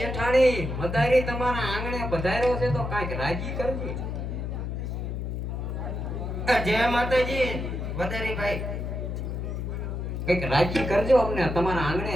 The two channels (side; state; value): left; noise; hum, 4 dB below the sound